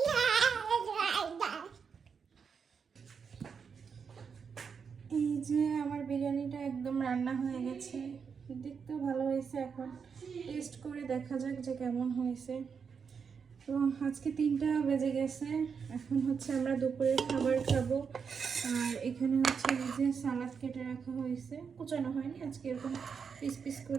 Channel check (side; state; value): left; quieter; 6.2 dB